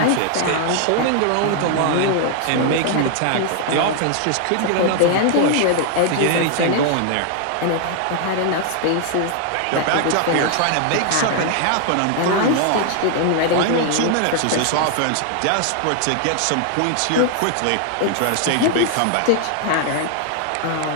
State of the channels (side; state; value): both; different; correlation 0.00